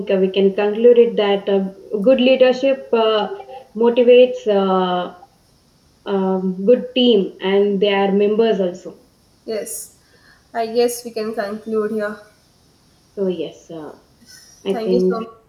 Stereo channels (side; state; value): both; identical; correlation 1.00